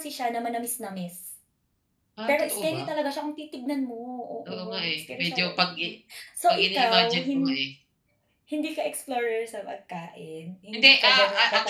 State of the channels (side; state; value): both; identical; correlation 1.00